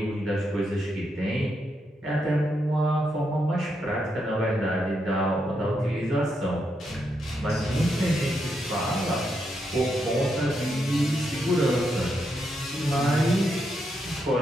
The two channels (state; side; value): normal; both; correlation 0.81